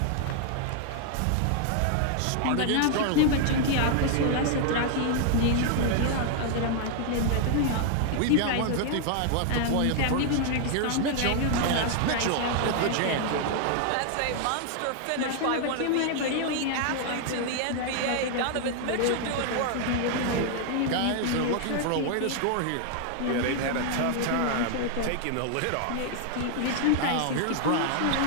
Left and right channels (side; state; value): both; different; correlation 0.00